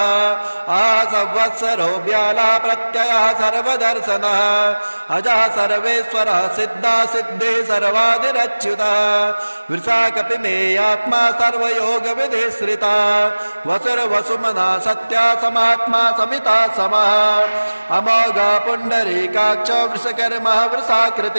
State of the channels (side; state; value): both; inverted; correlation -1.00